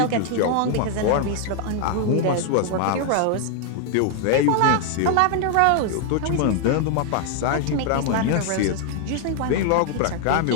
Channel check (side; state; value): both; different; correlation 0.00